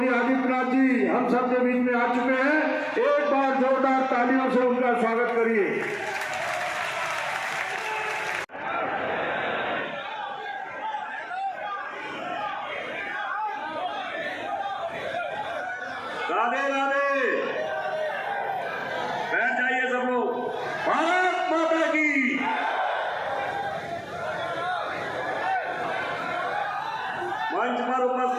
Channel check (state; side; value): identical; both; correlation 1.00